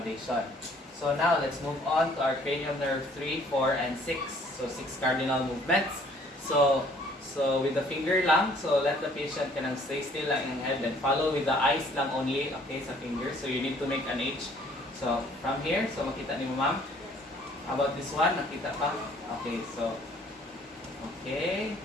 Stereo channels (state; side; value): normal; both; correlation 0.58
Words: So now let's move on to our cranial nerve 3, 4, and 6. So 6 cardinal movements. So with the finger lang, so let the patient stay still lang in head and follow with the eyes lang only, okay, sa finger. So you need to make an H. So from here, so makita ni mo ma'am? How about this one? Nakita pa? Okay, so okay.